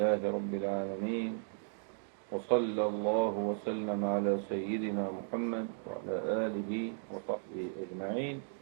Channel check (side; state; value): left; silent; digital silence